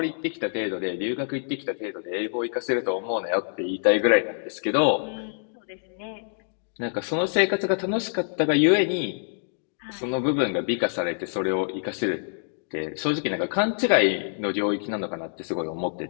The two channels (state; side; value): silent; right; digital silence